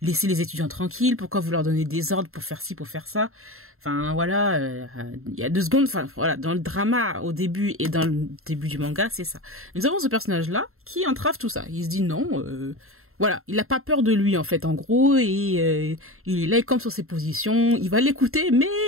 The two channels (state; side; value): late; left; 0.62 ms